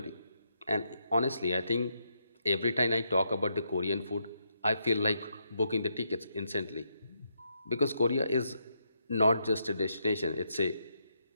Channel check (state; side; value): inverted; both; correlation -0.79